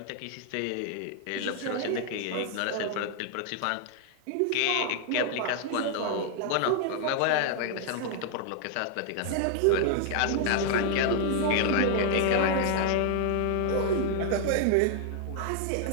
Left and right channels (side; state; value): both; different; correlation 0.00